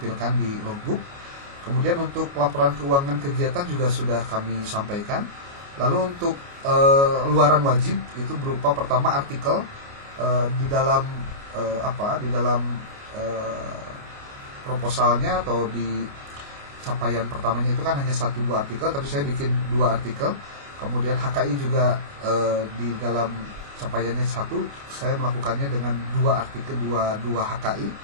di logbook. Kemudian untuk laporan keuangan kegiatan juga sudah kami sampaikan. Lalu untuk luaran wajib itu berupa pertama artikel di dalam di dalam proposalnya atau di capaian pertamanya itu kan hanya 1-2 artikel, tapi saya bikin 2 artikel. Kemudian HKI juga di dalam capaiannya 1, saya melakukannya dengan 2 artikel, 2 HKI.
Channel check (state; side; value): late; left; 29 ms